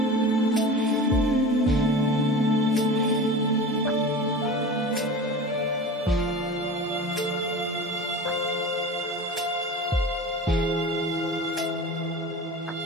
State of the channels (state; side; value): normal; both; correlation 0.34